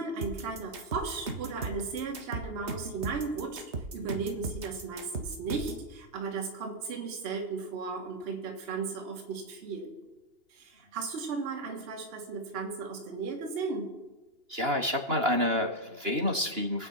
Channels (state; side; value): late; left; 2.8 ms